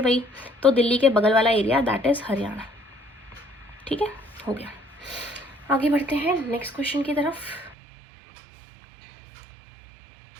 वही, तो दिल्ली के बगल वाला एरिया दैट इज हरियाणा। ठीक है, हो गया। आगे बढ़ते हैं नेक्स्ट क्वेश्चन की तरफ।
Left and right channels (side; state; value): left; drops out; at 7.8 s